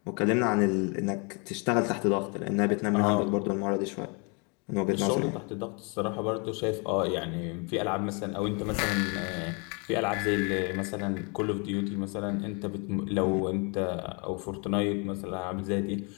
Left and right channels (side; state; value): right; quieter; 33.9 dB